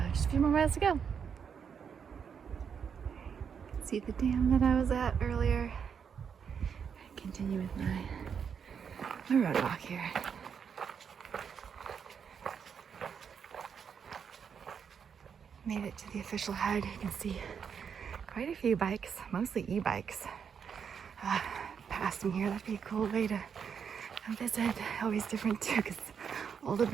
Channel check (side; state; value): left; quieter; 7.0 dB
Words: just a few more miles to go. See the dam that I was at earlier. I continue with my road walk here. Made it to the official head. You can see quite a few bikes, mostly e-bikes, passing here. That'd be a cool way to visit. Always different too, because old